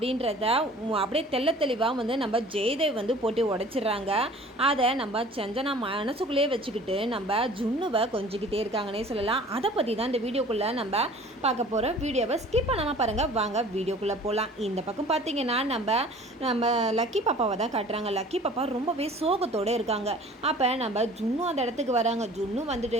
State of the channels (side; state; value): both; normal; correlation 0.47